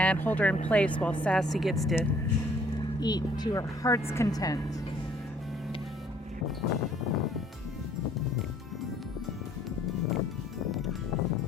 hold her in place while Sassy gets to eat to her heart's content.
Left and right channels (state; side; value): normal; both; correlation 0.60